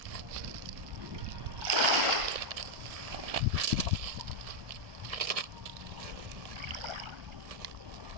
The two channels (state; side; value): late; left; 1.4 ms